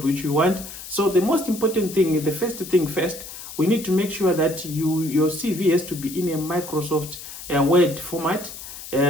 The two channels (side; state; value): left; noise; hiss, 12 dB below the sound